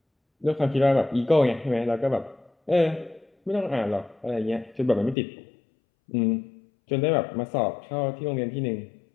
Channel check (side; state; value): right; drops out; at 5.2 s